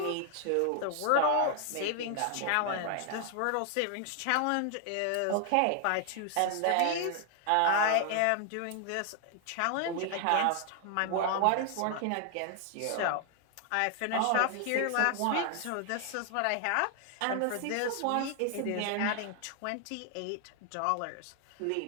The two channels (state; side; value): different; both; correlation 0.00